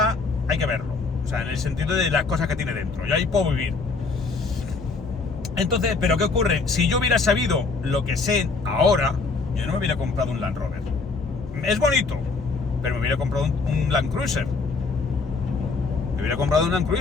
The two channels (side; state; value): right; quieter; 4.2 dB